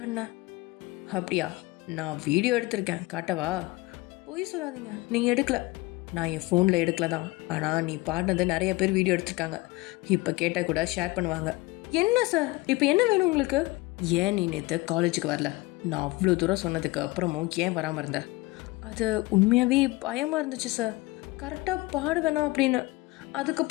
அப்படியா? நான் வீடியோ எடுத்திருக்கேன், காட்டவா? போய் சொல்லாதீங்க, நீங்கள் எடுக்கல. நான் என் ஃபோனில் எடுக்கல தான், ஆனால் நீ பாடினது நிறைய பேர் வீடியோ எடுத்திருக்காங்க. இப்போ கேட்டால் கூட ஷேர் பண்ணுவாங்க. என்ன சார் இப்போ என்ன வேணும் உங்களுக்கு? ஏன் நீ நேற்று காலேஜுக்கு வரல? நான் அவ்வளோ தூரம் சொன்னதுக்கு அப்புறமும் ஏன் வராமல் இருந்த? அது உண்மையாகவே பயமாக இருந்துச்சு சார், கரெக்டாக பாட வேணாம் அப்படின்னு.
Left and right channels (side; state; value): right; quieter; 21.6 dB